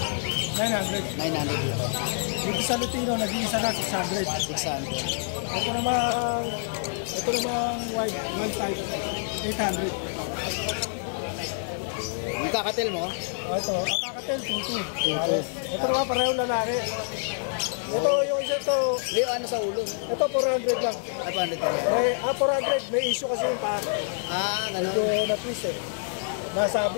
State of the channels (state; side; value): silent; right; digital silence